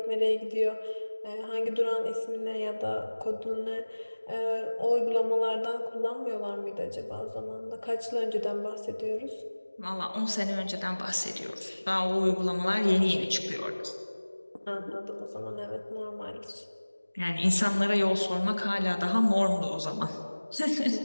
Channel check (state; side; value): inverted; both; correlation -1.00